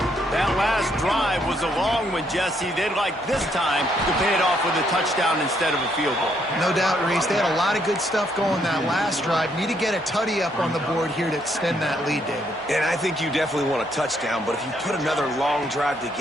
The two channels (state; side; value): normal; both; correlation 0.72